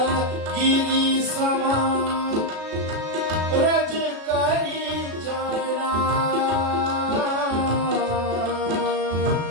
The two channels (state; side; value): late; left; 36 ms